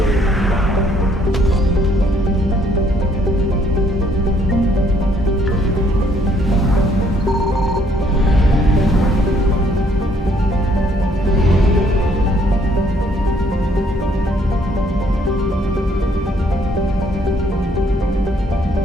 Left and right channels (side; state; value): both; normal; correlation 0.66